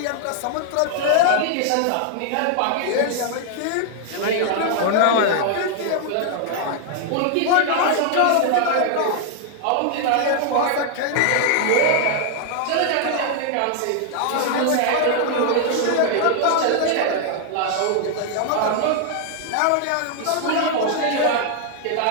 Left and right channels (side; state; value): both; different; correlation 0.00